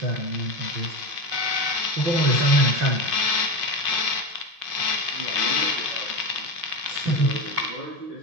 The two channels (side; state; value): left; late; 5.5 ms